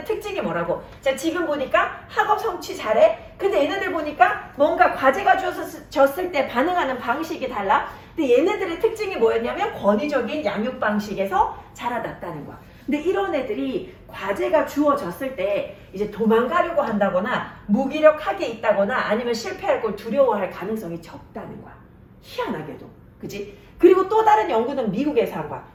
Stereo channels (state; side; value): identical; both; correlation 1.00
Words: 특징이 뭐라고? 자, 지금 보니까 학업 성취 잘해. 근데 얘네들 보니까 뭔가 과제가 주어졌을 때 반응하는 방식이 달라. 근데 얘네들의 특징이 뭐였냐면 권위적인 양육 방식에서 자라났다는 거야. 근데 이런 애들이 과제가 주어졌을 때 이제 도망가려고 한다거나 무기력하게 있다거나 아니면 실패할 걸 두려워할 가능성이 적다는 거야. 희한하게도. 그치? 그리고 또 다른 연구는 미국에서 한 거야.